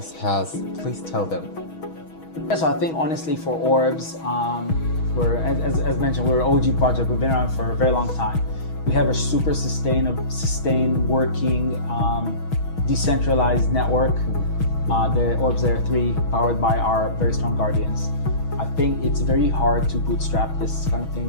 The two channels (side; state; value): right; late; 6.3 ms